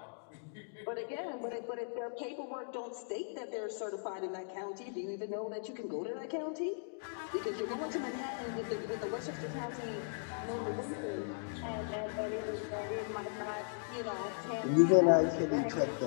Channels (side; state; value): right; silent; digital silence